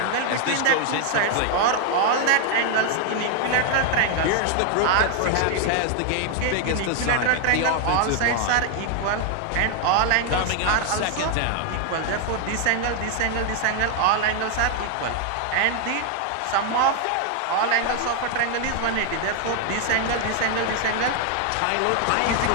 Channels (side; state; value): both; different; correlation 0.00